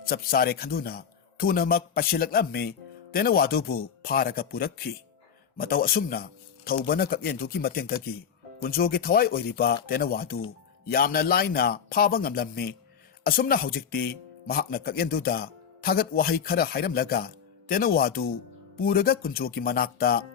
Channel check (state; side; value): quieter; right; 7.4 dB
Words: chapsare khanduna thunamak pasilaklammi tena wadubu pharaga purakhi matau asumna thobana kakyenduki matengdagi kunjogi thawai oiriba tena wadu yamna laina phaba ngamlammi asumna haujikti mahakna kakyenduda thagat wahai khara hairamlaga tena wadu puraga kunjogi manakta